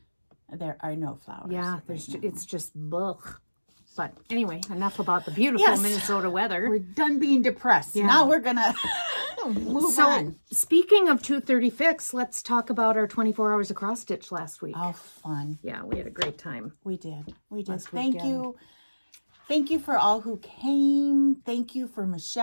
There are no flowers. Yeah, it's just blech. But anyway, enough about the beautiful Minnesota weather. We're done being depressed. Yeah. Now we're going to move on. Speaking of 2:30 Fix, let's talk about our 24 hours of cross stitch last week. Oh, fun. Yeah, we had a great time. We did. Thank you. Thank you for all who came. Thank you for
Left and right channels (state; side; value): inverted; both; correlation -1.00